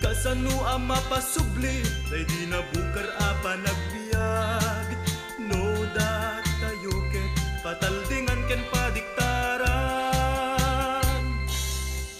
ang mapasubli, day di nabukar apa nagbiag. No dat tayo ket pataldingan ken padiktaran.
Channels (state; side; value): identical; both; correlation 1.00